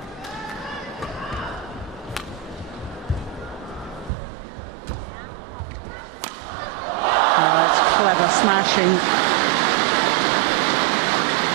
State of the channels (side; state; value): left; drops out; at 4.1 s